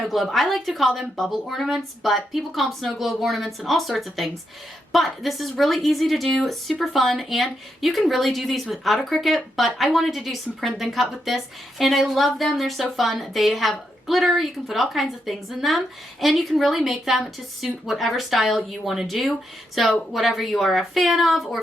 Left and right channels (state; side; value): normal; both; correlation 0.82